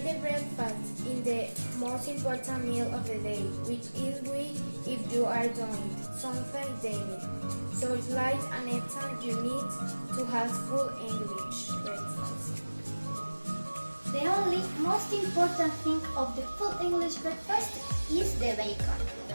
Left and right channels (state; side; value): inverted; both; correlation -1.00